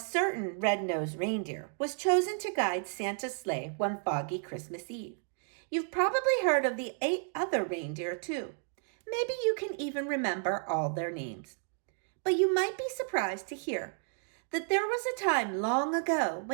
red-nosed reindeer was chosen to guide Santa's sleigh one foggy Christmas Eve. You've probably heard of the 8 other reindeer too. Maybe you can even remember all their names. But you might be surprised to hear that there was a time long ago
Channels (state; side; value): silent; left; 56 dB below the other